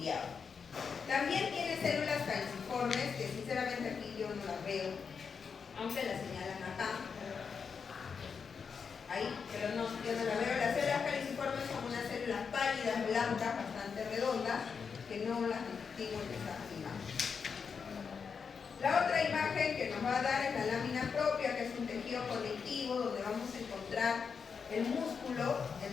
También tiene células caliciformes, que sinceramente aquí yo no las veo, aunque las señalan acá. Ahí, pero no, yo no las veo. Las células caliciformes son unas células pálidas, blancas, bastante redondas, que no las distingo en esa imagen. La otra imagen que nos va a dar es la lámina propia, que es un tejido conectivo donde vamos a encontrar el músculo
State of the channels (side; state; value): right; quieter; 6.0 dB